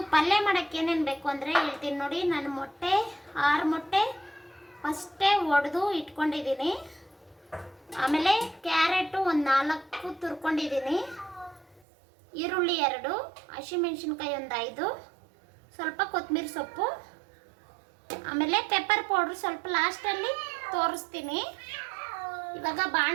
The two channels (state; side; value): drops out; left; at 11.8 s